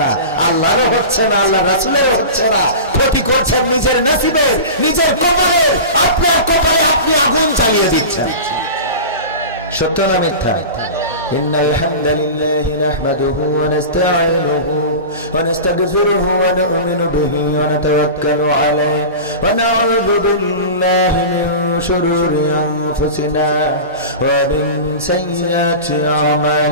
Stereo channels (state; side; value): inverted; both; correlation -0.31